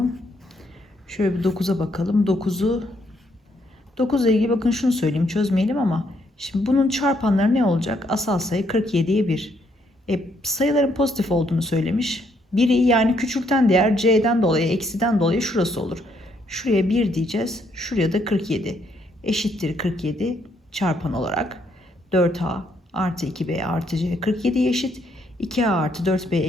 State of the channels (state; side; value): normal; both; correlation 0.72